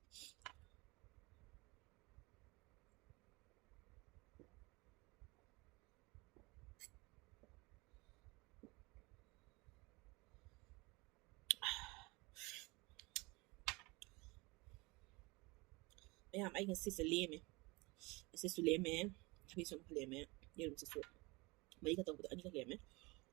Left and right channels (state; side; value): quieter; left; 24.9 dB